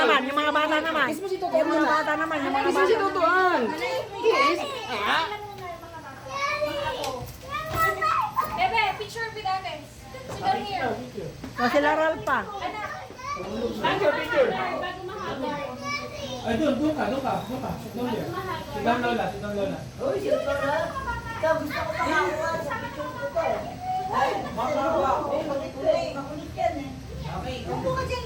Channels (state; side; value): identical; both; correlation 1.00